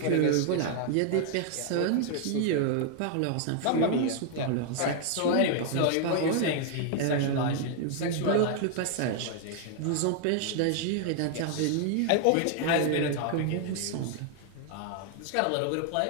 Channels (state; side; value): different; both; correlation 0.00